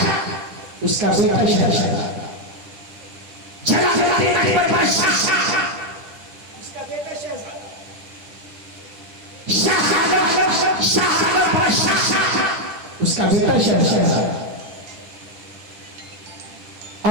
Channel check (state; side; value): late; left; 10 ms